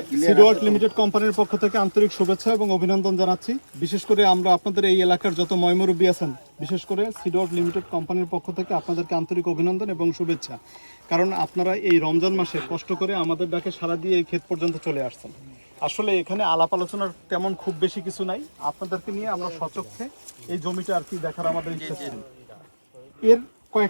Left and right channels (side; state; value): both; inverted; correlation -1.00